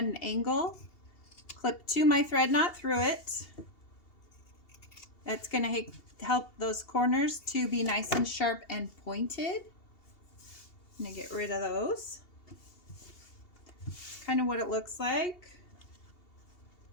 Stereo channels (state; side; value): late; right; 2.8 ms